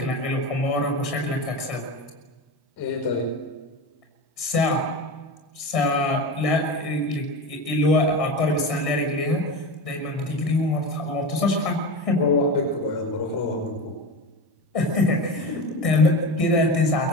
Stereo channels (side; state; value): right; late; 1.6 ms